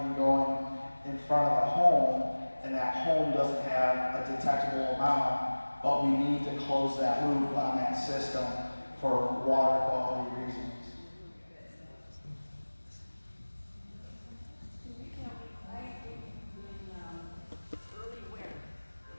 going in front of a home, and that home doesn't have a detectable amount, but we need to close that loop on that system for water quality reasons.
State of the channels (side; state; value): both; inverted; correlation -1.00